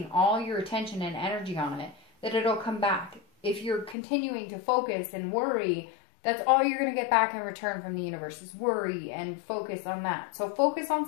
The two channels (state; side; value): drops out; right; at 4.0 s